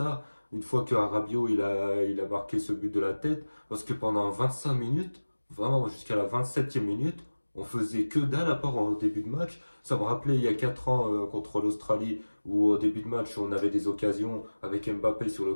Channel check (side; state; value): both; inverted; correlation -1.00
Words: Une fois que Rabiot il a marqué ce but de la tête, parce que pendant 25 minutes, vraiment jusqu'à la 27e minute, on faisait que dalle à part au début de match. Ça me rappelait il y a 4 ans contre l'Australie où au début de match on avait des occasions avec Mbappé sur le